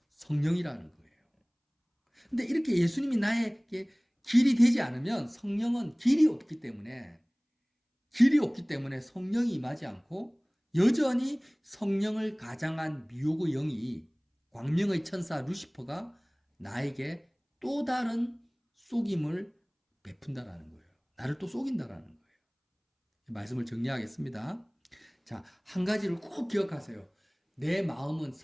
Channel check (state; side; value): identical; both; correlation 1.00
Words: 성령이라는 거예요. 근데 이렇게 예수님이 나에게 길이 되지 않으면 성령은 길이 없기 때문에 성령이 임하지 않고 여전히 성령을 가장한 미혹의 영이 광명의 천사 루시퍼가 나에게 또 다른 속임을 베푼다라는 거예요. 나를 또 속인다라는 거예요. 말씀을 정리하겠습니다. 자, 한 가지를 꼭 기억하세요. 내 마음은